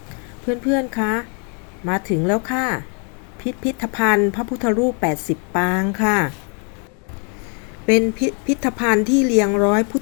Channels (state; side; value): quieter; right; 39.2 dB